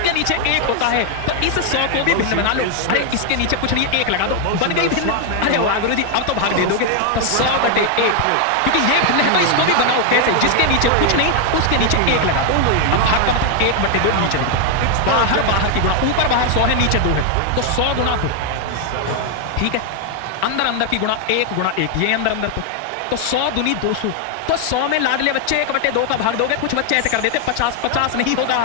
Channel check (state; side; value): different; both; correlation 0.00